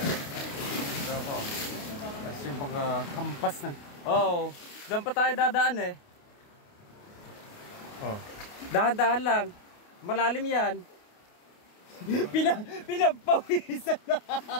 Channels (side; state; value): right; late; 28 ms